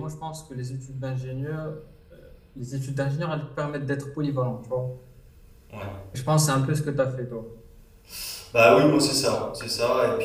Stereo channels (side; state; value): both; identical; correlation 1.00